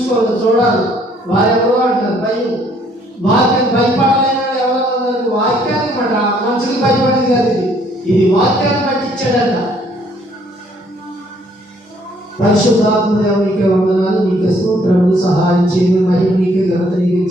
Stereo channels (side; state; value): both; normal; correlation 0.64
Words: చూడాలి. వారెవరో అంటారు వాక్యాన్ని భయపడలేని ఎవరో వాక్యాన్ని మాట మనుషులు భయపడేది కాదు. ఇది వాక్యాన్ని బట్టి ఇచ్చాడంట. పరిశుద్ధాత్మ నీకే వందనాలు, నీకే స్తోత్రములు, సహాయం చేయను, మహిమ నీకే, ఘనత నీకే,